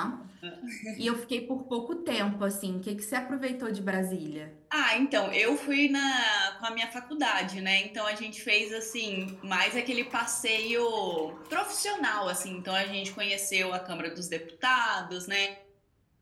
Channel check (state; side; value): identical; both; correlation 1.00